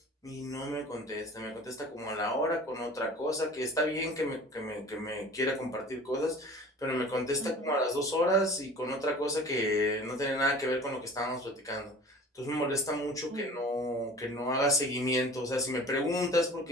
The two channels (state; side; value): normal; both; correlation 0.42